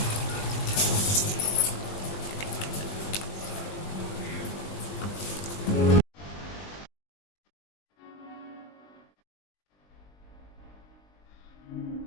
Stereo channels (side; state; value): right; late; 20 ms